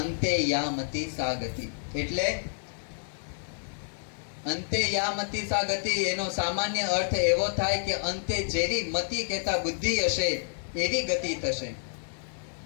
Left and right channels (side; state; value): right; silent; digital silence